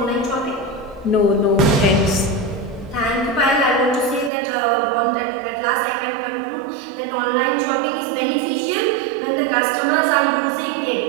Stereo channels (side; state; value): left; drops out; at 4.3 s